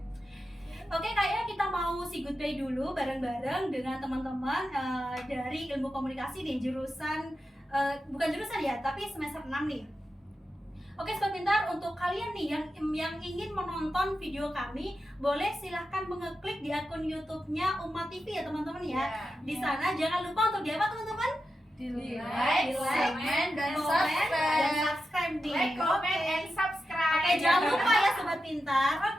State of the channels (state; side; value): normal; both; correlation 0.90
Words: Oke, kayaknya kita mau say goodbye dulu bareng-bareng dengan teman-teman dari ilmu komunikasi di jurusan bukan jurusan ya, tapi semester 6 nih. Oke, Sobat Pintar, untuk kalian nih yang ingin menonton video kami, boleh silahkan mengeklik di akun YouTube-nya Umat TV ya teman-teman ya. Di sana jangan lupa untuk di apa teman-teman? Di like, comment, dan subscribe nih. Like, comment, Oke. and subscribe. Oke, jangan lupa ya Sobat Pintar.